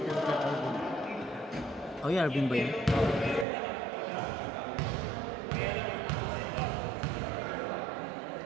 Oh, yeah, Arvin ba yun?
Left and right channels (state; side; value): drops out; left; at 3.5 s